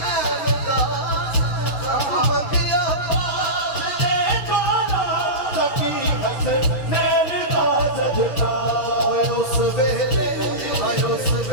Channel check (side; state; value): right; late; 6.5 ms